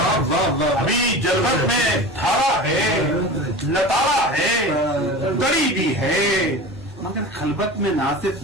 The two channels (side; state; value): both; normal; correlation 0.33